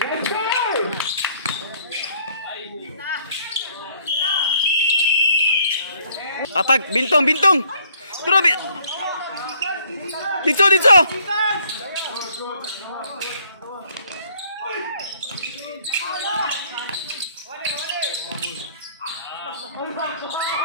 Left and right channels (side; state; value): both; inverted; correlation -0.63